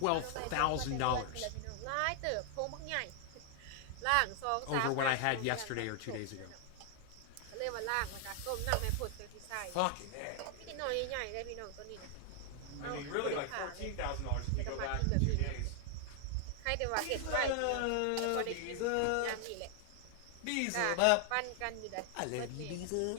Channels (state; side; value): different; both; correlation 0.00